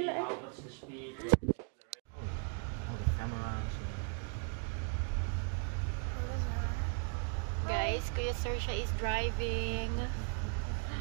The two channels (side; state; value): left; quieter; 39.6 dB